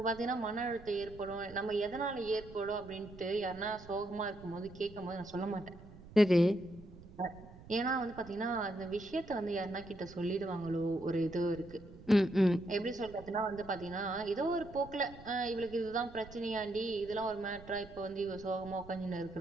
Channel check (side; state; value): right; noise; rumble, 18 dB below the sound